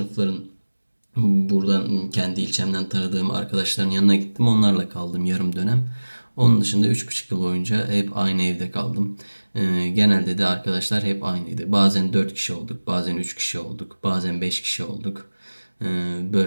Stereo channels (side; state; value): both; inverted; correlation -1.00